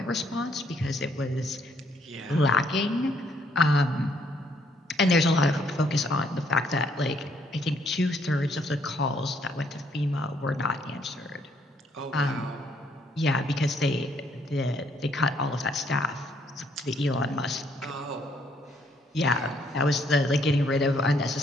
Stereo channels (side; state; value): both; normal; correlation 0.68